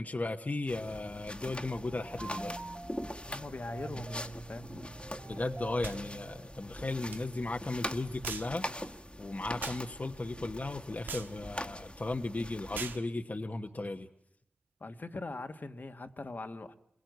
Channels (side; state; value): both; normal; correlation 0.86